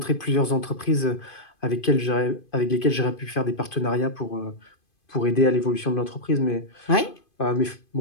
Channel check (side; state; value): right; late; 2.5 ms